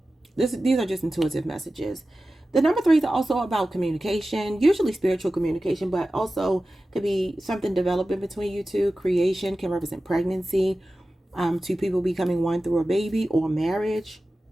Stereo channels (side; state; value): both; normal; correlation 0.95